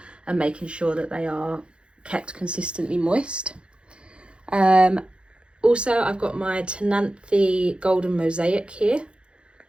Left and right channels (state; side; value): late; left; 0.056 ms